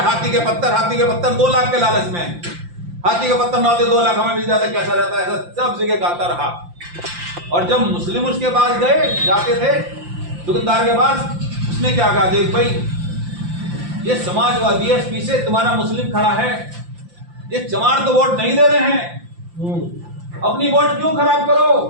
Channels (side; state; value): left; late; 5.8 ms